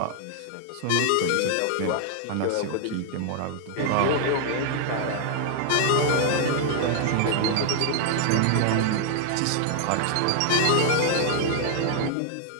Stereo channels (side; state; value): both; different; correlation 0.00